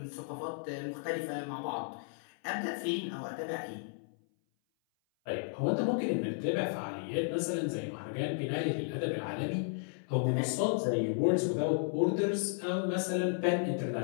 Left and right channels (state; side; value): silent; right; 55 dB below the other